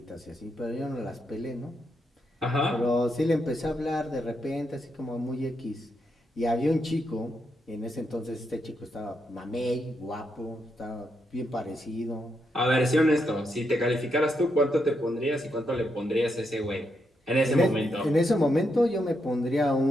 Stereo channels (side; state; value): both; normal; correlation 0.81